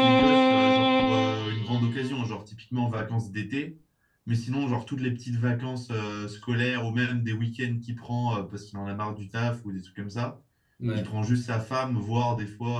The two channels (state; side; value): identical; both; correlation 1.00